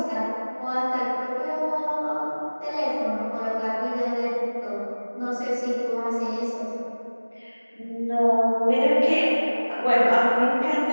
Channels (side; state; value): both; inverted; correlation -1.00